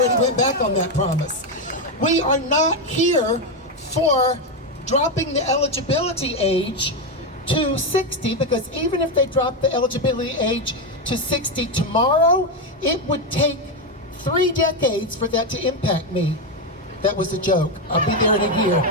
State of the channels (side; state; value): both; normal; correlation 0.07